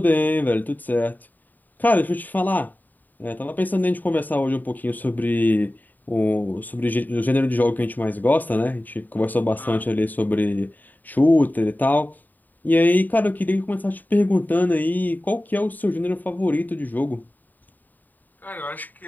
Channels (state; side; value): late; right; 0.086 ms